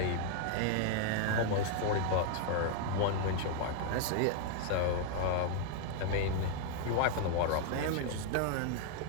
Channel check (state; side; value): different; both; correlation 0.00